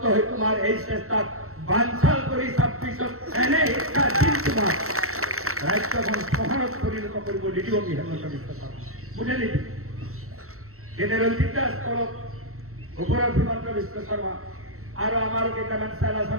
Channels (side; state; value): left; late; 0.63 ms